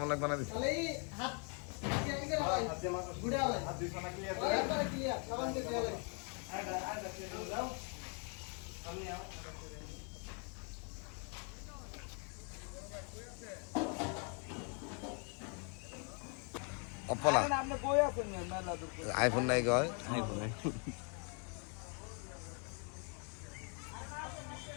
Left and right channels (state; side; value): quieter; right; 38.4 dB